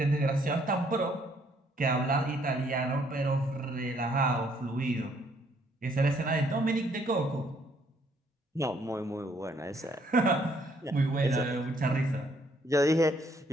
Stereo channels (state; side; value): normal; both; correlation 0.67